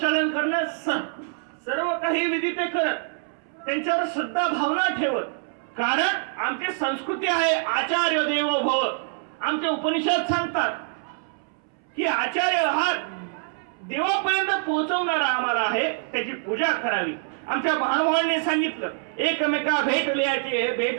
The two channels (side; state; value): left; silent; 62 dB below the other